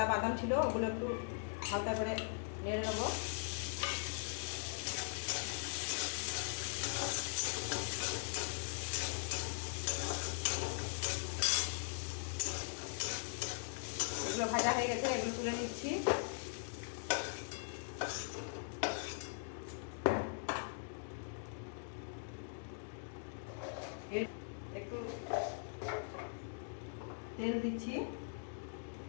বাদাম ছিল, ওগুলো একটু হালকা করে নেড়ে নেবো। এগুলো ভাজা হয়ে গেছে, এগুলো তুলে নিচ্ছি। একটু তেল দিচ্ছি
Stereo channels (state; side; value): silent; right; digital silence